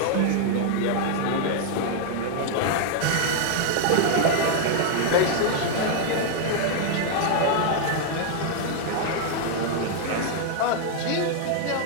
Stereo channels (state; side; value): different; both; correlation 0.00